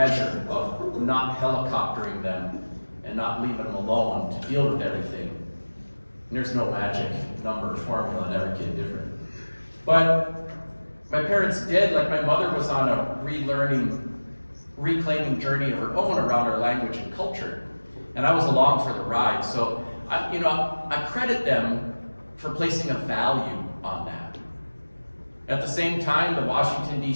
of not helicoptering them and not leaving them alone to deal with everything. And there's no magic number or formula, and every kid different. But my parents did, like my mother was on a reclaiming journey of her own around our language and culture. And I was along for the ride. So, I credit them for placing a value on that. At the same time, the Washington,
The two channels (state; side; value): inverted; both; correlation -1.00